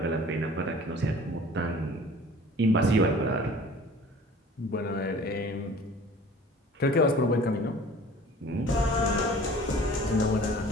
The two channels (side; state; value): both; normal; correlation 0.46